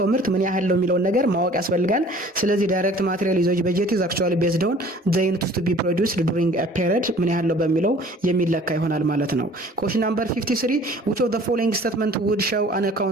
ምርት ምን ያህል ነው የሚለውን ነገር ማወቅ ያስፈልጋል። ስለዚህ ዳይሬክት ማቴሪያል ዩዜጅ በጀት ኢዝ አክቹዋሊ ቤዝድ ኦን ዘ ዩኒት ቱ ቢ ፕሮዲውስድ ዱሪንግ ኤ ፔሪድ ምን ያህል ነው በሚለው የሚለካ ይሆናል ማለት ነው። ኩዌስችን ናምበር 53 which of the following statement would show an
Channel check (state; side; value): normal; both; correlation 0.50